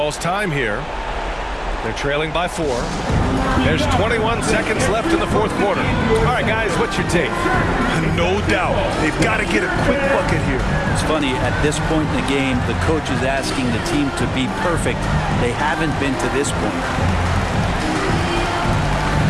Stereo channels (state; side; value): identical; both; correlation 1.00